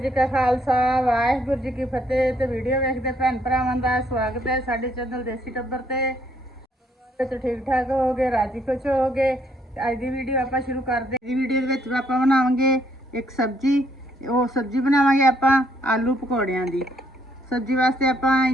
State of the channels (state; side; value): normal; both; correlation 0.70